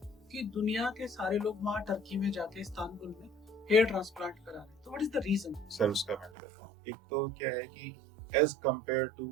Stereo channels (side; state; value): left; drops out; at 6.3 s